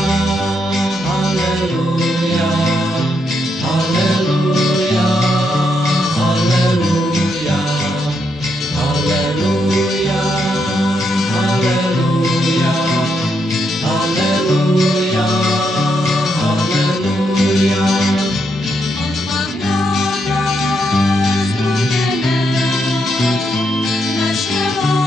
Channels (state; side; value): normal; both; correlation 0.79